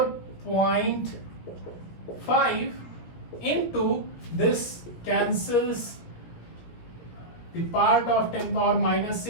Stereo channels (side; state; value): right; late; 17 ms